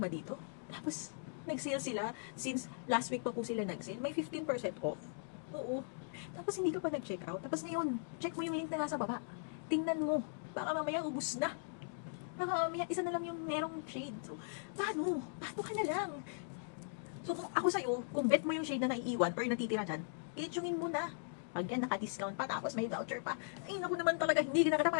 dito? Tapos, nag-sale sila. Since last week pa po sila nag-sale, may 15% off. Oo. Tapos hindi ka pa nag-check out. Tapos ngayon, check mo yung link na nasa baba. Tingnan mo. Baka mamaya ubus na. Baka mamaya isa na lang yung merong shade. So, paano? Paano ka na lang? So, kung ako sa'yo, kung bet mo yung shade na naiiwan or yung natitira dyan, i-tungin mo na. Pag yan, naka-discount pa, tapos may voucher pa. Ay, naku naman talaga, hindi ka na kita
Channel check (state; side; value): silent; right; digital silence